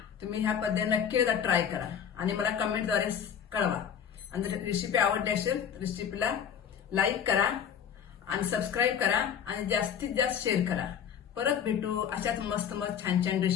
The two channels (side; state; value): right; quieter; 8.1 dB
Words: तुम्ही ह्या पद्धतीने नक्की एकदा ट्राय करा आणि मला कमेंटद्वारे कळवा. आणि जर रेसिपी आवडली असेल रेसिपीला लाईक करा आणि सबस्क्राईब करा आणि जास्तीत जास्त शेअर करा. परत भेटू अशाच मस्त मस्त छान छान